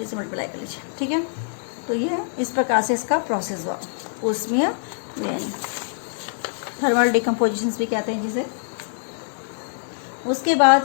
से मल्टीप्लाई कर लीजिए, ठीक है। तो ये इस प्रकार से इसका प्रोसेस हुआ ऊष्मीय वियोजन, थर्मल डिकम्पोजिशन भी कहते हैं जिसे। उसके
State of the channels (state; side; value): silent; right; 63 dB below the other